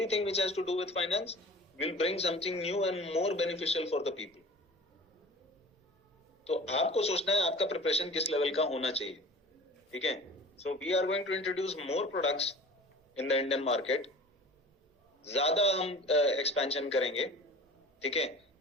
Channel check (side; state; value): both; normal; correlation 0.41